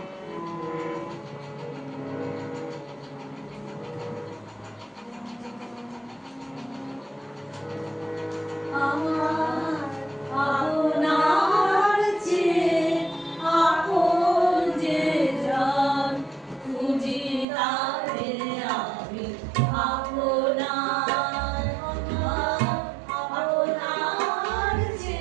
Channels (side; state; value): left; drops out; at 17.4 s